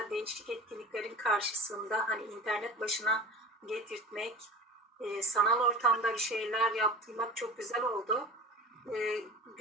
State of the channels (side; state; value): both; normal; correlation 0.35